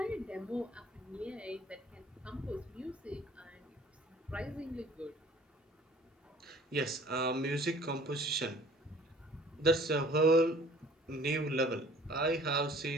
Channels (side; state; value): both; normal; correlation 0.52